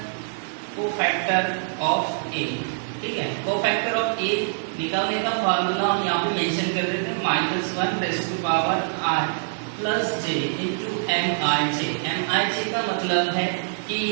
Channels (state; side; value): silent; left; 61 dB below the other